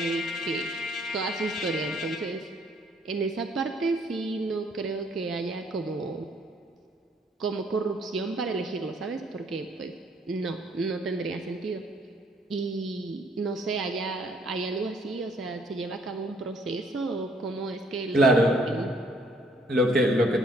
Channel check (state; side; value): normal; both; correlation 0.64